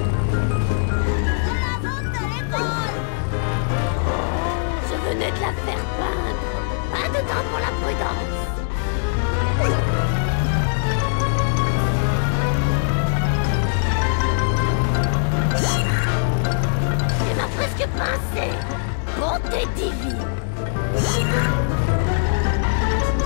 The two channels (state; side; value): silent; right; digital silence